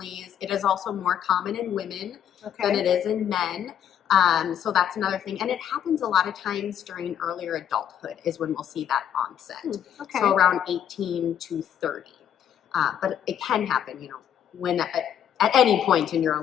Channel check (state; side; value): quieter; right; 9.6 dB